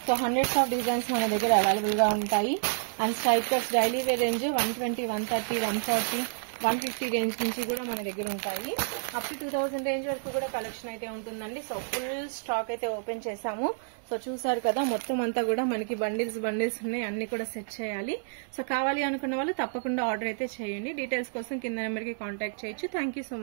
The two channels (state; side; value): silent; left; 58 dB below the other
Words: సో హండ్రెడ్స్ ఆఫ్ డిజైన్స్ మన దగ్గర అవైలబుల్ గా ఉంటాయి. And straight cuts daily wear range 120, 130, 140, 150 range నుంచి కూడా మన దగ్గర ఉంటాయి. అప్ టు 2000 రేంజ్ వరకు కూడా కలెక్షన్ అయితే ఉంటుందండి. సో ఫుల్ స్టాక్ అయితే ఓపెన్ చేసాము. సో చూసారు కదా, మొత్తం అంతా కూడా మనకి బండిల్స్ ఉన్నాయి, అన్ని కూడా సెట్ చేయాలి. సో కావాలి అనుకున్న వాళ్ళు తప్పకుండా ఆర్డర్ అయితే చేయండి. డీటెయిల్స్ కోసం కింద నెంబర్ కి కాంటాక్ట్ చేయొచ్చు. Thank you so